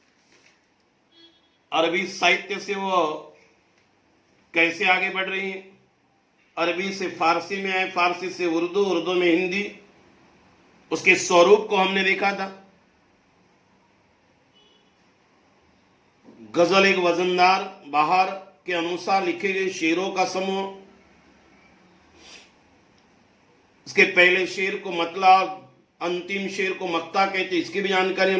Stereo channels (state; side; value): identical; both; correlation 1.00